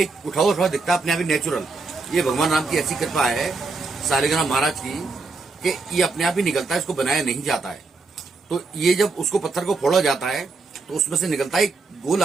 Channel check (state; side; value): quieter; left; 3.9 dB